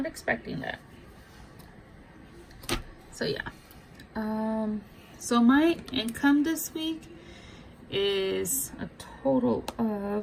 expecting that. So yeah. So my income this week is a total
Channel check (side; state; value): both; identical; correlation 1.00